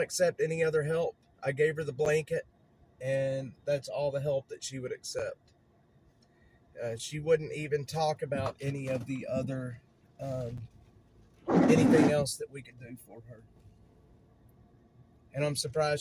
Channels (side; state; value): both; identical; correlation 1.00